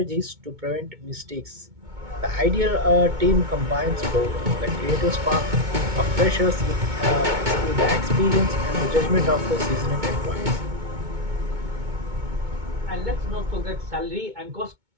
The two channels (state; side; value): late; left; 2.2 ms